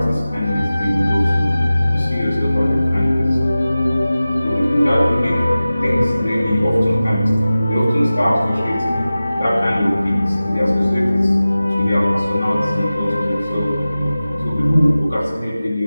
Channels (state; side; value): inverted; both; correlation -0.96